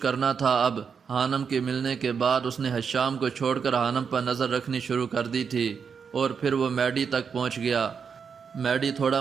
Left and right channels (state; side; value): quieter; left; 6.3 dB